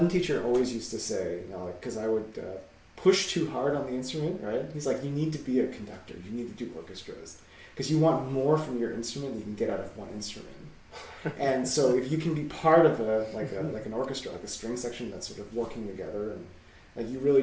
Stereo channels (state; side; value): identical; both; correlation 1.00